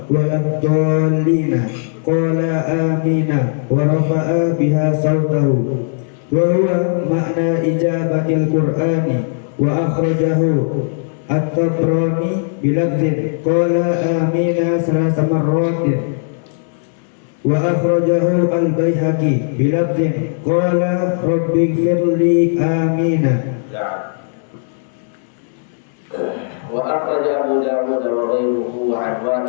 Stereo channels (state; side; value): silent; right; 63 dB below the other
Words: wa lam dallina qala amina wa rafa'a biha sawtahu wa huwa ma'na ijabatil qur'ani wa akhrajahu at-Tabrani bilafdhin qala amina salasa marratin wa akhrajahu al-Baihaqi bilafdhin qala rabbighfirli amina. Wa akhraja Abu Dawud wa ghayruhu an